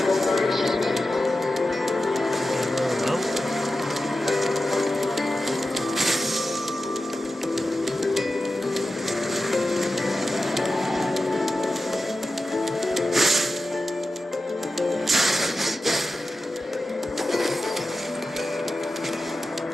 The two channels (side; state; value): both; normal; correlation 0.92